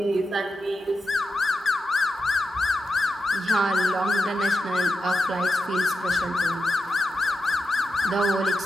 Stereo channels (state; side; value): normal; both; correlation 0.89